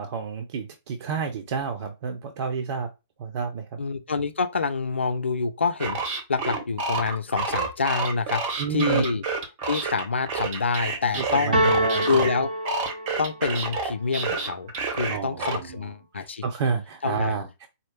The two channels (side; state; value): both; inverted; correlation -0.52